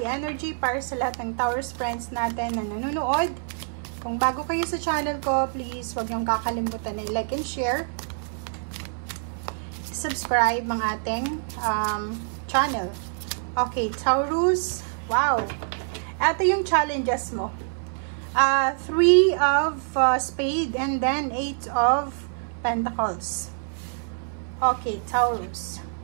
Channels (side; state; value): left; silent; 60 dB below the other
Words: energy para sa lahat ng Taurus friends natin na nanonood. Kung bago kayo sa channel ko, please huwag niyong kakalimutan na like and share. Subscribe ang ating channel. Okay, Taurus. Wow! Ito yung challenges mo. 3 of spade and then 8 of Pentacles. Okay, Taurus.